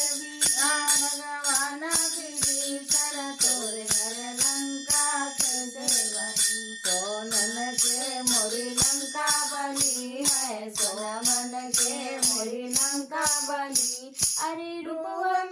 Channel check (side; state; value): both; identical; correlation 1.00